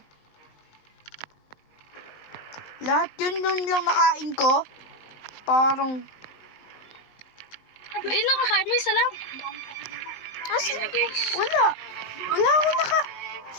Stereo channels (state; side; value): late; right; 19 ms